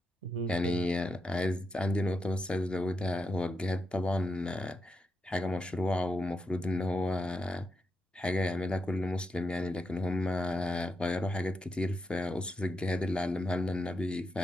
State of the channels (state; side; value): normal; both; correlation 0.85